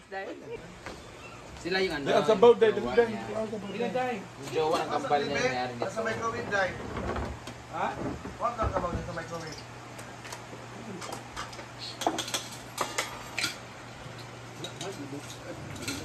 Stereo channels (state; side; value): identical; both; correlation 1.00